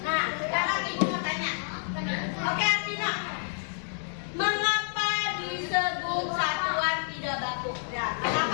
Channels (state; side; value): silent; right; digital silence